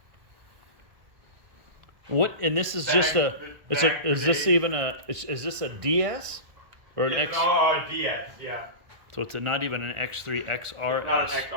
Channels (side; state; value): left; late; 1.5 ms